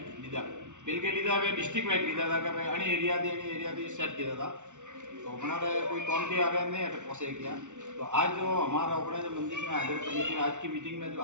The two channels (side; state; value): left; late; 0.85 ms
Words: लीधा बिल के लीधा वे डिस्ट्रिक्ट वाइज लीधा था कि भाई अणी एरिया थी सेट किया था। तो हमारे कोई कौन के आगे नहीं है पहुँचे किया। तो आज जो हमारा अपने जो मंदिर में हाजिर कमेटी आज की मीटिंग में जो